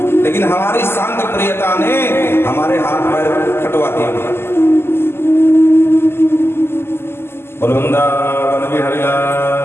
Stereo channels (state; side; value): late; right; 0.12 ms